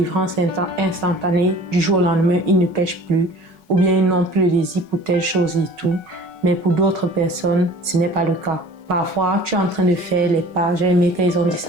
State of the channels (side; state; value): left; late; 5.4 ms